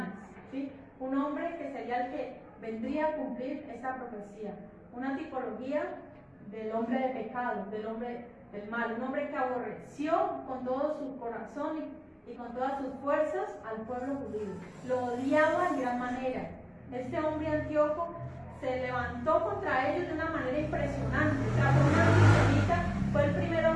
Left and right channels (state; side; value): identical; both; correlation 1.00